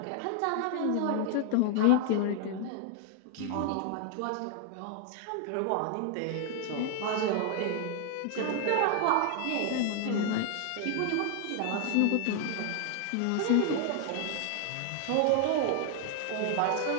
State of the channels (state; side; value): different; both; correlation 0.00